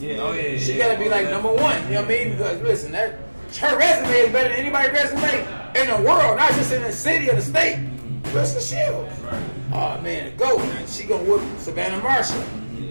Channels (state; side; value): inverted; both; correlation -1.00